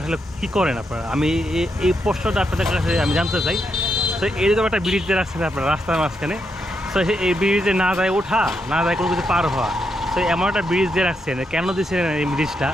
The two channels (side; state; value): both; normal; correlation 0.81